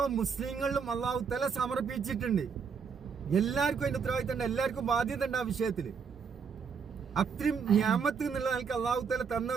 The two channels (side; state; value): left; quieter; 6.1 dB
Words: മുസ്ലിങ്ങളിലും അല്ലാഹു തആല സമർപ്പിച്ചിട്ടുണ്ട്. എല്ലാവർക്കും അതിന്റെ ഉത്തരവാദിത്വം ഉണ്ട്, എല്ലാവർക്കും ബാധ്യത ഉണ്ട് ആ വിഷയത്തില്. അത്രയും നിയമത്ത് എന്നുള്ള നിലക്ക് അല്ലാഹു തആല തന്ന